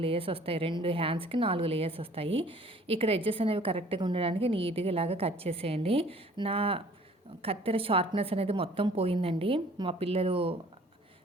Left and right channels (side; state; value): both; normal; correlation 0.54